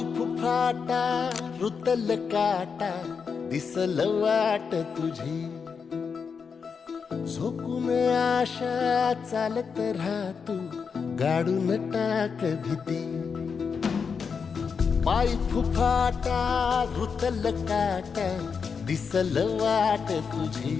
फुफाटा रुतल काटा दिसल वाट तुझी झोकून आशा चालत राहतू गाडून टाक भीती पाय फुफाटा रुतल काटा दिसल वाट तुझी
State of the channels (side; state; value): right; quieter; 5.9 dB